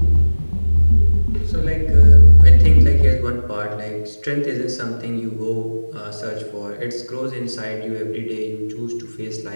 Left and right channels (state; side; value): inverted; both; correlation -1.00